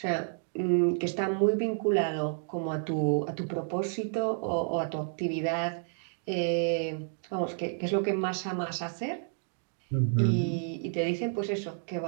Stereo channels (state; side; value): silent; left; digital silence